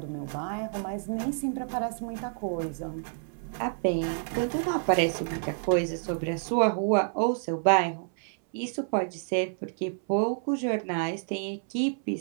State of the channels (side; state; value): left; silent; 59 dB below the other